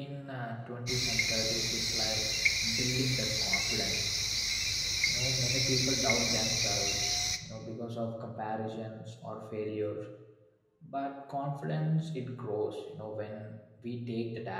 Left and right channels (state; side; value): identical; both; correlation 1.00